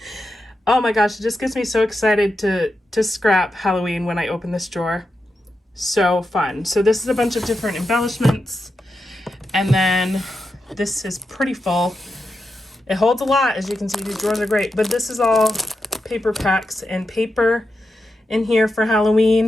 Oh my gosh, it just gets me so excited to scrap Halloween when I open this drawer. So fun. So this is a bunch of different embellishments. And then this is pretty full. It holds a lot, as you can see. These drawers are great. But this is all paper packs and paper in here for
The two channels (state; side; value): normal; both; correlation 0.88